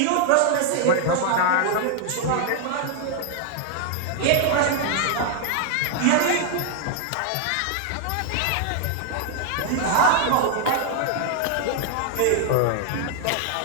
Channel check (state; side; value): different; both; correlation 0.00